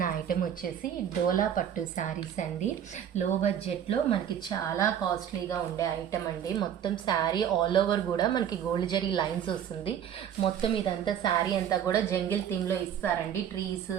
ఐటెం వచ్చేసి డోలా పట్టు శారీస్ అండి. లో బడ్జెట్లో మనకి చాలా కాస్ట్లీగా ఉండే ఐటెం అండి. మొత్తం శారీ ఆల్ ఓవర్ కూడా మనకి గోల్డ్ జరీ లైన్స్ వస్తుంది. మొత్తం ఇదంతా శారీ అంతా కూడా జంగిల్ థీమ్లో ఇస్తారండి. ట్రీస్,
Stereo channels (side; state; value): left; quieter; 9.3 dB